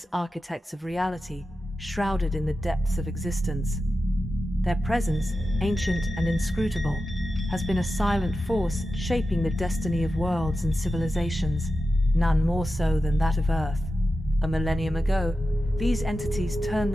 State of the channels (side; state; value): both; normal; correlation 0.92